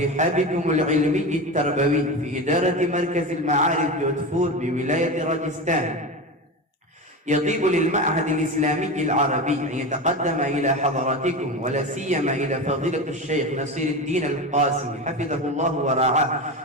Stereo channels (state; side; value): normal; both; correlation 0.23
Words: رحابكم العلمي التربوي في إدارة مركز المعارف جودهپور بولاية راجستان، يطيب للمعهد الإسلامي العربي أن يتقدم إلى حضراتكم ولا سيما إلى فضيلة الشيخ نصير الدين القاسمي حفظه الله ورعاه